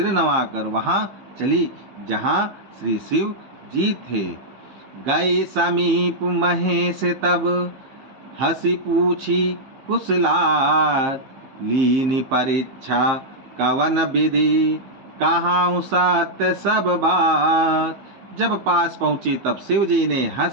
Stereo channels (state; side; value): late; left; 15 ms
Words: नवाकर वहाँ चली जहाँ श्री शिव जी थे। गए समीप महेश तब, हंसी पूछी कुशलात। लीनी परीक्षा कवन विधि, कहाँ सत्य सब बात। जब पास पहुंची तब शिव जी ने